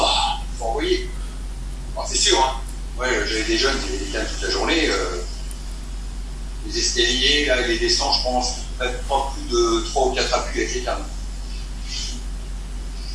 envoyer. Alors, c'est sûr, hein. Ouais, j'avais des jeunes qui étaient toute la journée. Les escaliers, là, les descentes, je pense, peut-être pas plus de 3 ou 4 appuis avec les cannes.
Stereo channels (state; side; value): identical; both; correlation 1.00